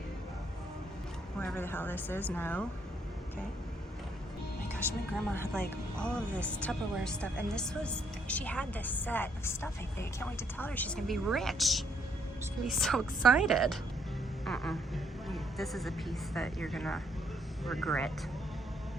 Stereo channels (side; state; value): both; normal; correlation 0.71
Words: Wherever the hell this is, no. Okay. Oh my gosh, my grandma had like all of this Tupperware stuff, and she had this set of stuff, I think. I can't wait to tell her she's gonna be rich. She's gonna be so excited. This is a piece that you're gonna regret.